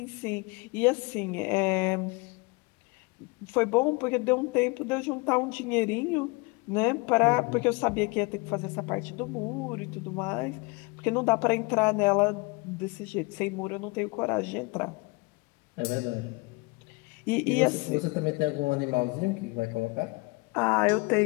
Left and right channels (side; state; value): right; quieter; 27.3 dB